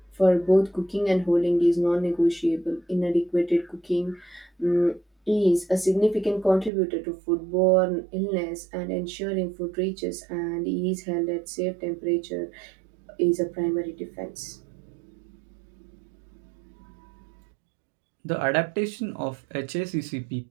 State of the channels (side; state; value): left; drops out; at 6.7 s